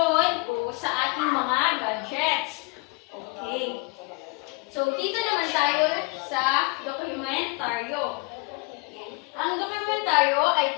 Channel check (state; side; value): quieter; right; 27.4 dB